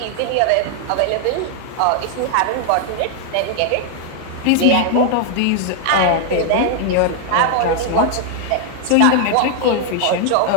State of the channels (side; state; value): both; different; correlation 0.00